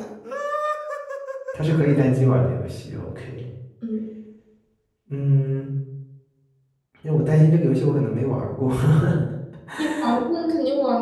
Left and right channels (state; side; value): identical; both; correlation 1.00